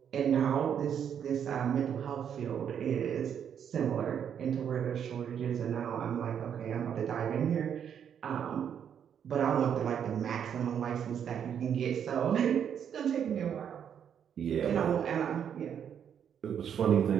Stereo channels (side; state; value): left; quieter; 8.4 dB